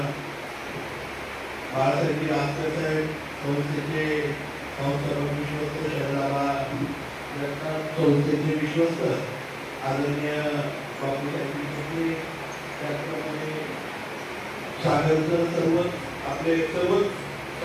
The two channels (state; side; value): identical; both; correlation 1.00